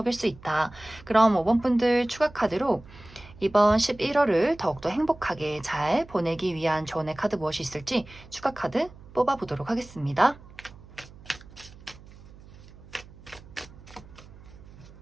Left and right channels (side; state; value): right; noise; hum, 20 dB below the sound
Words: 수 있다. 그럼 5번 분들 추가 카드로 이번 11월을 더욱더 행복하게 잘 보내기 위한 조언의 카드 무엇이 있을지 추가 카드 뽑아보도록 하겠습니다.